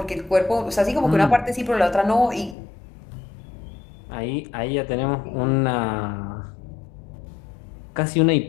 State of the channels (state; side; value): drops out; right; at 2.6 s